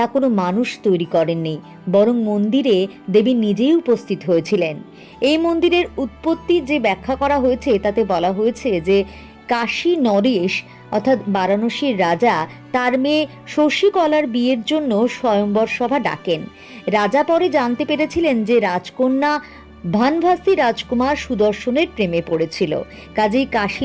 কোনো মানুষ তৈরি করেননি, বরং মন্দিরে দেবী নিজেই উপস্থিত হয়েছিলেন। এই মন্দিরের উৎপত্তি যে ব্যাখ্যা করা হয়েছে তাতে বলা হয়েছে যে কাশী নরেশ অর্থাৎ বারাণসীর রাজা তার মেয়ে শশীকলার বিয়ের জন্য স্বয়ম্বর সভা ডাকেন। রাজা পরে জানতে পেরেছিলেন যে রাজকন্যা ভানভাসী রাজকুমার সুদর্শনের প্রেমে পড়েছিল, কাজেই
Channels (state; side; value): identical; both; correlation 1.00